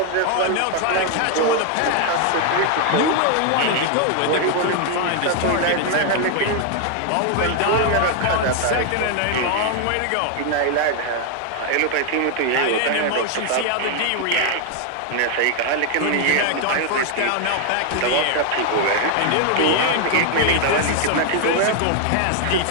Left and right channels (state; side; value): different; both; correlation 0.00